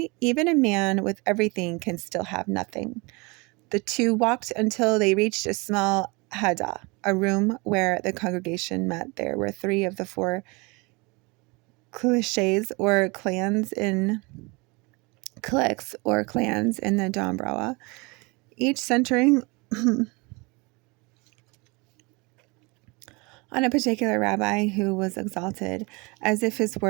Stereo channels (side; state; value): left; quieter; 27.3 dB